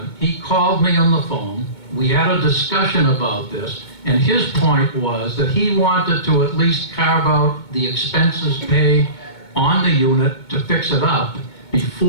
he called me on the phone. We had a discussion about this, and his point was that he wanted to at least carve out the expenses paid on the unit to fix it up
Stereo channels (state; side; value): late; right; 2.2 ms